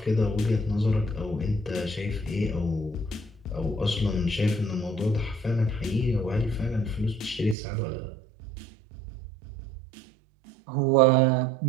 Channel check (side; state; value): left; drops out; at 7.6 s